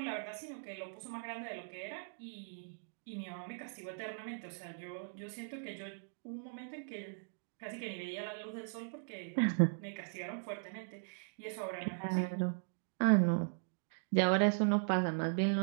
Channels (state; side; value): silent; left; digital silence